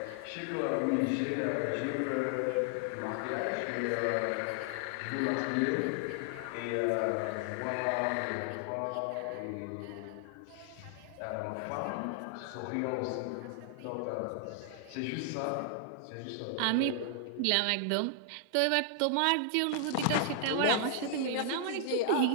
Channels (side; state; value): both; different; correlation 0.00